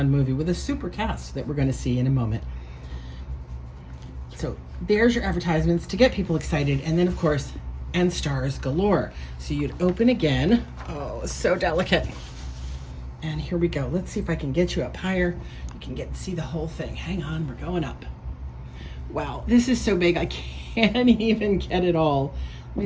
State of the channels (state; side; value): identical; both; correlation 1.00